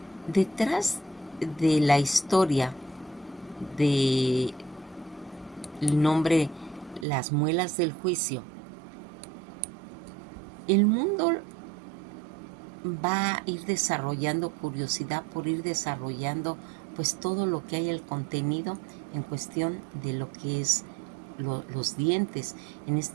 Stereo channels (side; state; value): left; drops out; at 7.1 s